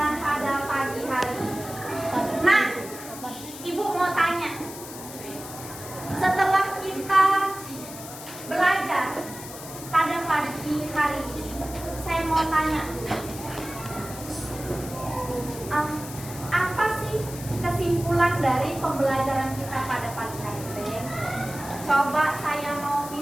pada pagi hari ini. Nah, Ibu mau tanya, setelah kita belajar pada pagi hari ini, saya mau tanya, apa sih kesimpulan dari pembelajaran kita pada pagi hari ini? Coba saya mau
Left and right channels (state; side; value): noise; left; hiss, 13 dB below the sound